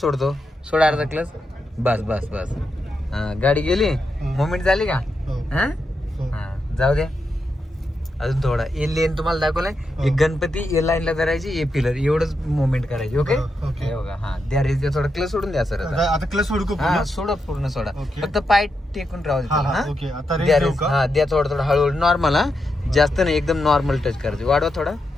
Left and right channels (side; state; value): both; normal; correlation 0.85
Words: सोडा अर्धा क्लच. बस बस बस. हा गाडी गेली. मुवमेंट झाली का? हो. हा हो. हा जाऊ द्या. अजून थोडा. ए लेन तुम्हाला दाखवलाय. एक गणपती ए लाईनला धरायची. ए पिलर एवढंच मुवमेंट करायची. ओके. ओके. हे बघा. हा द्या रेस द्या. थोडा क्लच सोडून द्या सर. आता क्लच सोडू का हा पूर्ण? सोडा पूर्ण सोडा. ओके. फक्त पाय टेकून राहू हा, हा, दे. ओके. आता रेस द्या देऊ रेस. का? हा द्या थोडं थोडं हळूहळू. नॉर्मल. हा जास्त नाही. एकदम नॉर्मल टच करायचं. वाढवा थोडा.